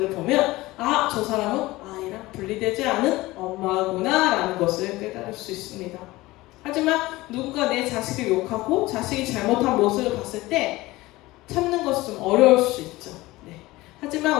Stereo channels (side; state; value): right; quieter; 19.3 dB